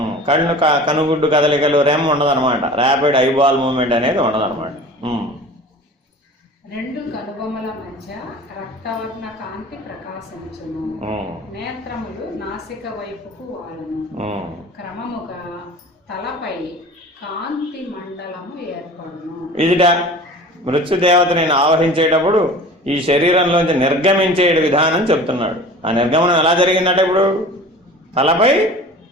కనుగుడ్డు కదలికలు రెమ్ ఉండదన్నమాట. ర్యాపిడ్ ఐబాల్ మూవ్మెంట్ అనేది ఉండదన్నమాట. రెండు కనుబొమ్మల మధ్య రక్తవర్ణ కాంతి ప్రకాశించును, నేత్రములు నాసిక వైపుకు వాలును, క్రమముగా తలపై కాంతి మండలము ఏర్పడును. ఇదిట మృత్యుదేవతని ఆవహించేటప్పుడు ఈ శరీరంలోంచి నిర్గమించే విధానం చెప్తున్నాడు. ఆ నిర్గమనం ఎలా జరిగిందట? ఇప్పుడు తలపై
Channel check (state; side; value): normal; both; correlation 0.40